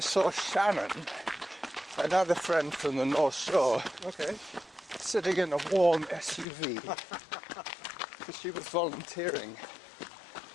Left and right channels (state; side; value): drops out; right; at 6.5 s